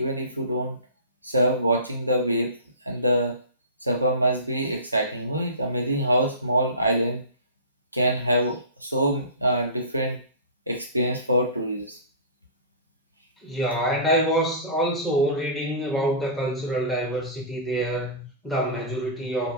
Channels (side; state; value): both; inverted; correlation -0.34